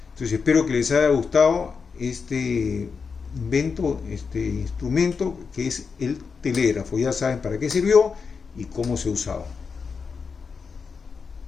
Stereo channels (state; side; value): quieter; right; 5.4 dB